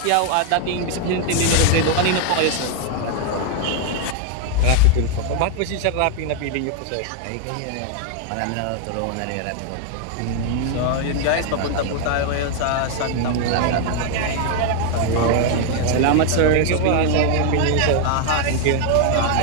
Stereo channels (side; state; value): both; different; correlation 0.00